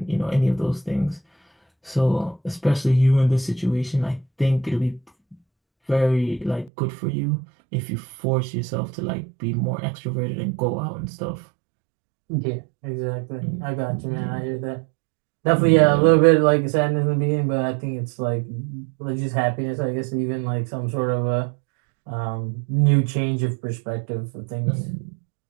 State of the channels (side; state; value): left; drops out; at 6.7 s